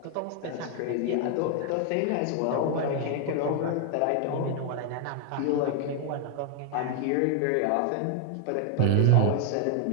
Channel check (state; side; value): different; both; correlation 0.00